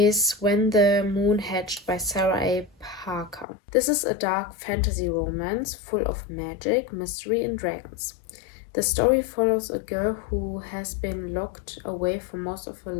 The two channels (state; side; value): drops out; right; at 3.5 s